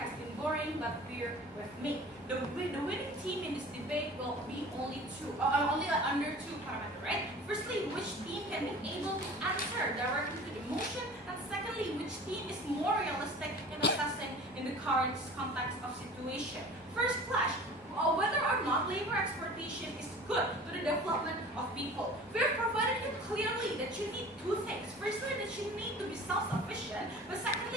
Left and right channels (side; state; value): both; normal; correlation 0.42